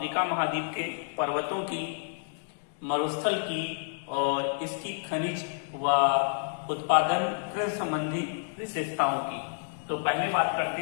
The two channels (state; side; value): silent; right; digital silence